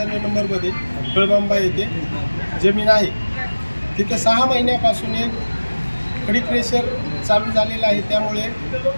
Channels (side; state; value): both; inverted; correlation -1.00